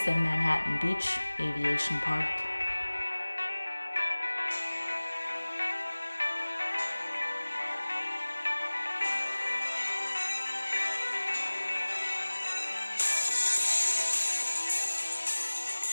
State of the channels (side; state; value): both; inverted; correlation -1.00